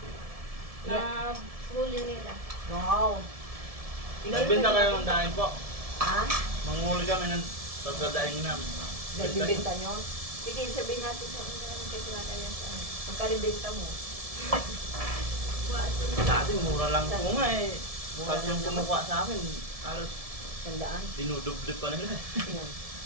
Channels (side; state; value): left; late; 1.7 ms